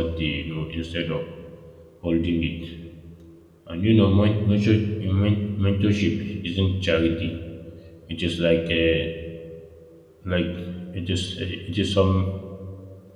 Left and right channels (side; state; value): both; identical; correlation 1.00